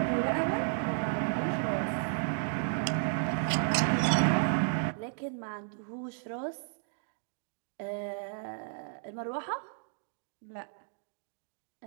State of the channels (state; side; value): silent; left; digital silence